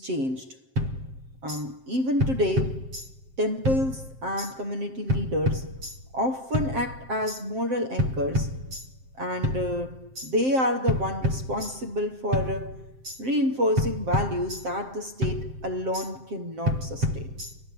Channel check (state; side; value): late; left; 7.6 ms